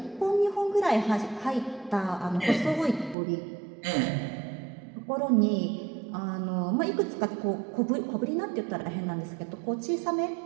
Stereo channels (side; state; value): left; drops out; at 3.2 s